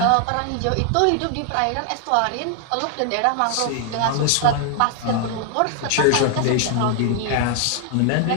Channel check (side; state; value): both; different; correlation 0.00